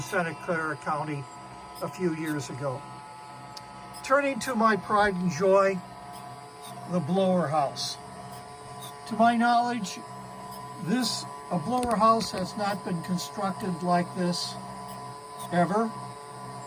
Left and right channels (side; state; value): both; identical; correlation 1.00